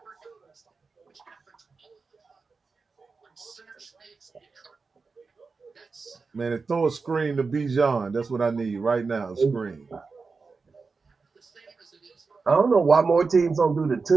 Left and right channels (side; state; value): left; quieter; 4.5 dB